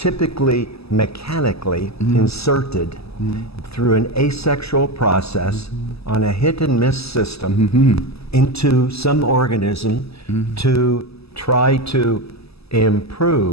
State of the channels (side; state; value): right; late; 0.78 ms